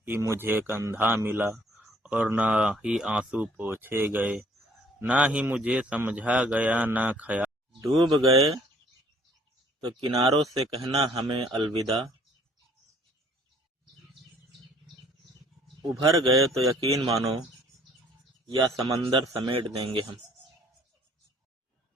ही मुझे कंधा मिला, और न ही आंसू पोंछे गए, ना ही मुझे समझा गया ना ख्याल। डूब गए तो किनारों से कहना हमें अलविदा, उभर गए तो यकीन मानो या समंदर समेट देंगे हम।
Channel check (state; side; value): normal; both; correlation 0.58